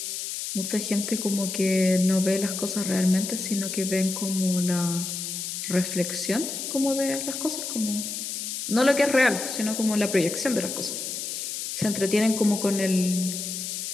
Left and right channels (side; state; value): left; noise; hiss, 5 dB below the sound